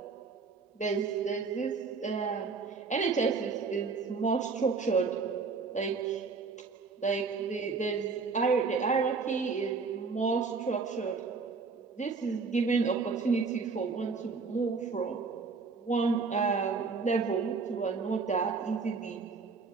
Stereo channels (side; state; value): left; quieter; 4.7 dB